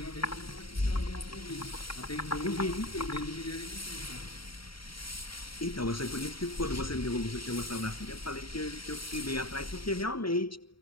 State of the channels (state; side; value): late; right; 0.74 ms